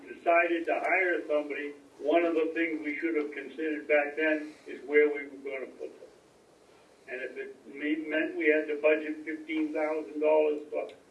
decided to hire somebody, one of the things we should have considered back then is where we were going to put them. And if it meant we had to budget $15,000 for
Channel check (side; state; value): both; identical; correlation 1.00